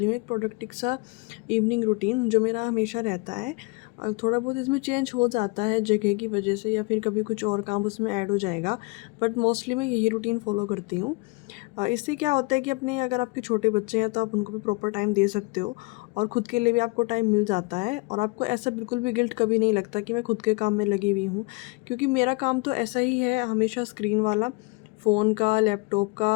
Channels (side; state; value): right; quieter; 27.9 dB